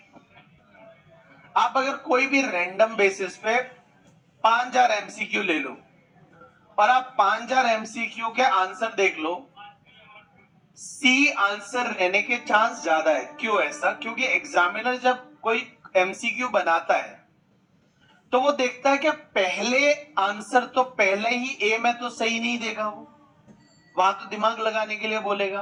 आप अगर कोई भी रैंडम बेसिस पे 5000 एमसीक्यू ले लो और आप 5000 एमसीक्यू के आंसर देख लो, सी आंसर रहने के चांस ज्यादा है। क्यों ऐसा? क्योंकि एग्जामिनर जब कोई एमसीक्यू बनाता है तो वो देखता है कि पहले आंसर तो पहले ही ए में तो सही नहीं देगा, वो वहां तो दिमाग लगाने के लिए बोलेगा।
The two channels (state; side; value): identical; both; correlation 1.00